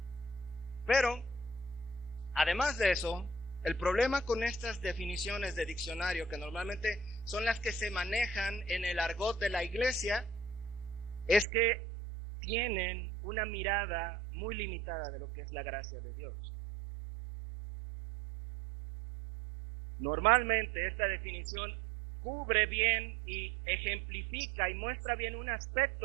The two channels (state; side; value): drops out; left; at 11.5 s